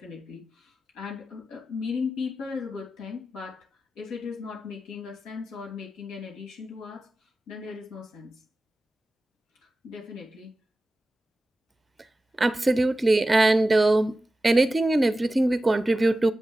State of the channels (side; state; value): both; normal; correlation 0.94